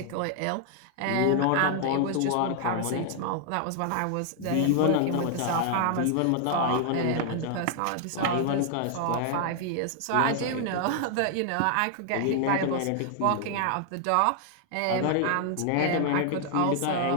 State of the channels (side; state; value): both; different; correlation 0.00